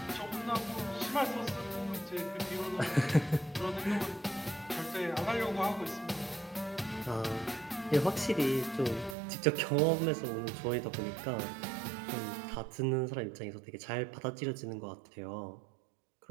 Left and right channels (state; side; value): drops out; left; at 9.2 s